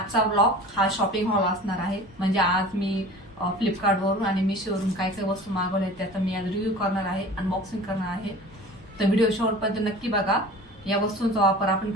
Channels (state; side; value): normal; both; correlation 0.41